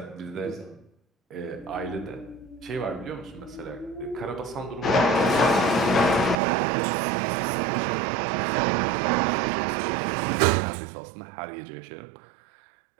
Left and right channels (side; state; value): left; drops out; at 6.4 s